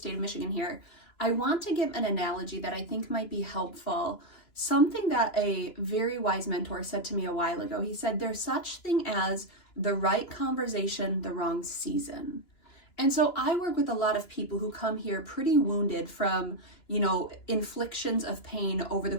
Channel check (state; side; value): late; right; 2.9 ms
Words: of Michigan here. I want to give an analogy that I think might be helpful. Something that a very wise mentor said to me a while ago. He said, there's such thing as the right conversation, the wrong season. And so I work with a lot of people who come here pretty wounded from, inflictions of pain over the